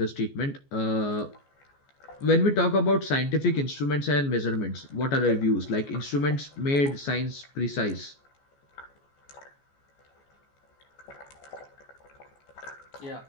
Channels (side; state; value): right; late; 14 ms